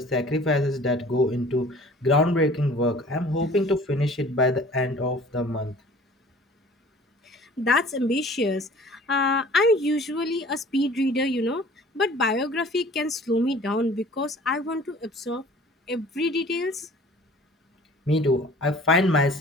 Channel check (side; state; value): both; normal; correlation 0.48